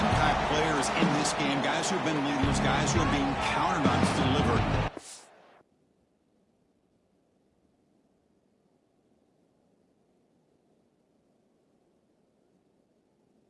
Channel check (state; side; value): identical; both; correlation 1.00